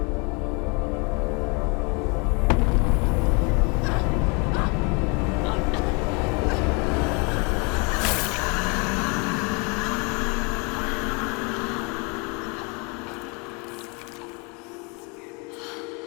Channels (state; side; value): quieter; right; 31.8 dB